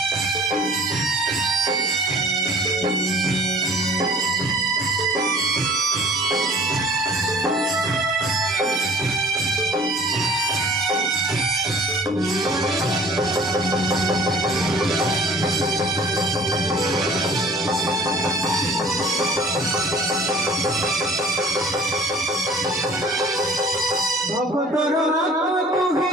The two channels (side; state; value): both; normal; correlation 0.49